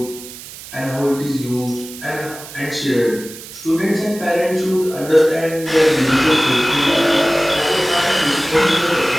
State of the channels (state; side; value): noise; right; hiss, 15 dB below the sound